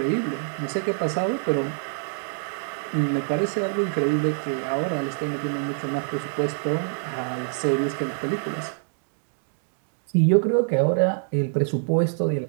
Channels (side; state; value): left; silent; digital silence